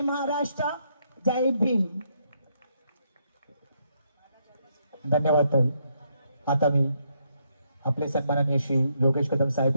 महाराष्ट्र, जय भीम. धन्यवाद ताई. आता मी आपले सन्माननीय श्री योगेश कदम साहेब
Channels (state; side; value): inverted; both; correlation -0.75